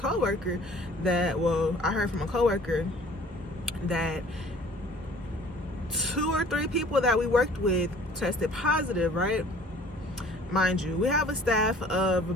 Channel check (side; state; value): both; normal; correlation 0.51